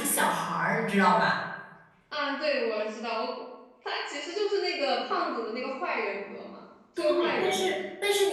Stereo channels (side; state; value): both; identical; correlation 1.00